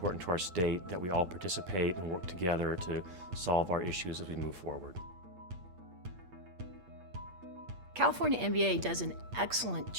to our state that we all participate and work together to solve our issues as we move forward. California MBA does an excellent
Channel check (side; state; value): left; late; 8.4 ms